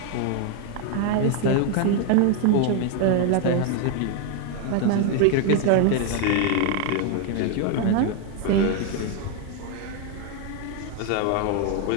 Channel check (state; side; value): different; both; correlation 0.01